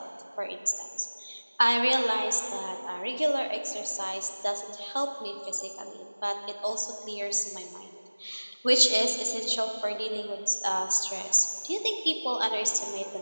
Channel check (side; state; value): both; inverted; correlation -1.00